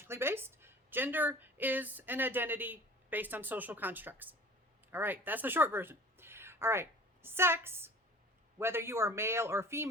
based. Gender is an identity based on social constructs. All right, that's the short version. All right, sex, whether you are male or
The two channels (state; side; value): normal; both; correlation 0.45